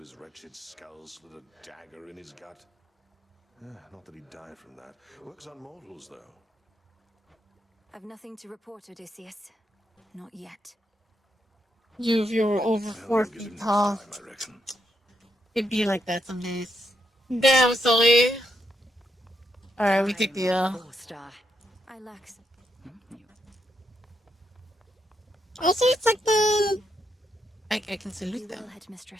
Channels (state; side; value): normal; both; correlation 0.79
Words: his wretched skull, slid a dagger in his gut. Not that he'd die from that. Works on mortals, though. I've nothing to report, Odysseus. Not yet. If you were over 4 Get him feet next tall, time, I reckon. it'd be like that some days. Damn, Sully. Alright, we take the Star. I lax. Also, it's like the... I can salute You them. will,